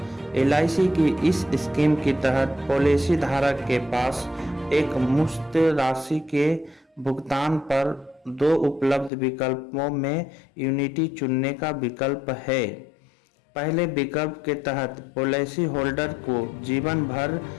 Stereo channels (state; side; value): drops out; right; at 9.1 s